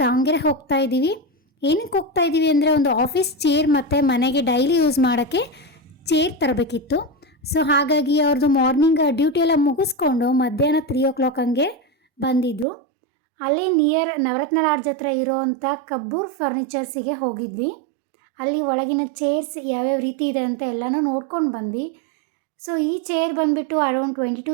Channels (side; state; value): left; drops out; at 12.7 s